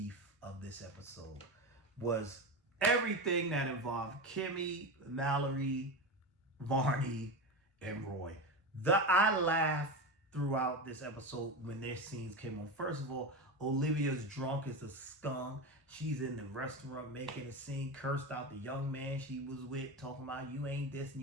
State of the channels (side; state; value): both; normal; correlation 0.20